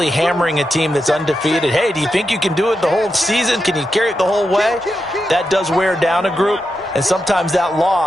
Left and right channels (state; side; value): normal; both; correlation 0.87